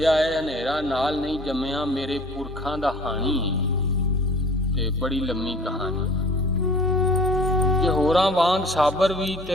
है हनेरा नाल नहीं जम्मिया। मेरे पुरखां दा हानी ते बड़ी लम्मी कहानी। जे होरां वांग साबर भी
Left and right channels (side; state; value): both; normal; correlation 0.48